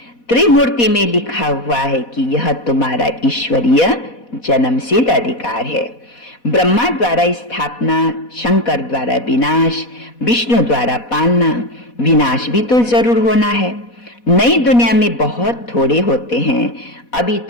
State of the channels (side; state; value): right; late; 4.1 ms